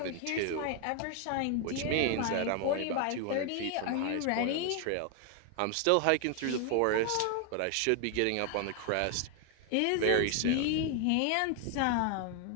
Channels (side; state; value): both; different; correlation 0.00